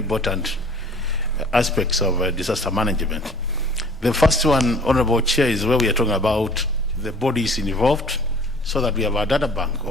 aspects of disaster management. The first one, Honorable Chair, is where we are talking about the bodies involved, so that we have a data bank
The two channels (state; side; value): normal; both; correlation 0.49